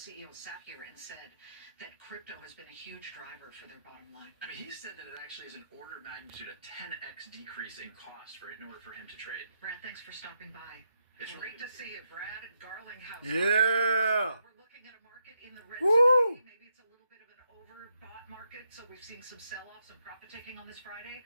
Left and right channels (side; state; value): both; inverted; correlation -0.81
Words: sat here and said that crypto has been a huge driver for their bottom line. I mean, he said that it actually is an order of magnitude, a 10x decrease in cost in order for him to trade. Brad, thanks for stopping by. It's Great to see you, Brad. Garlinghouse. Yeah. We're looking at a market in the red Woo! today. Maybe it's a little bit of an overbought market, so we've seen some sell-offs and profit taking on this Friday.